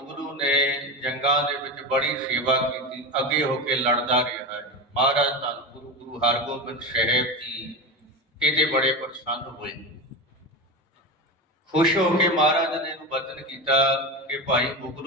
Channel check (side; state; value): both; normal; correlation 0.21